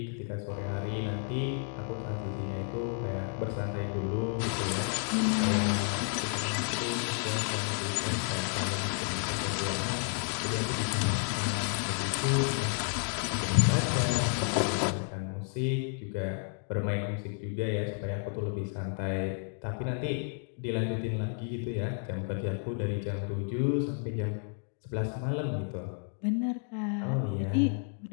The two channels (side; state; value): right; silent; 57 dB below the other